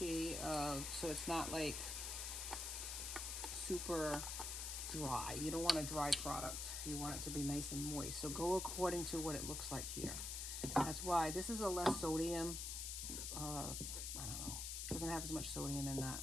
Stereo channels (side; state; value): left; noise; hiss, 3 dB below the sound